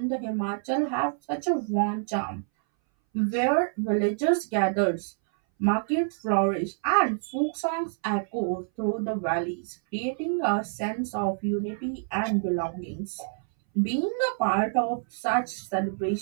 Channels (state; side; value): silent; left; 60 dB below the other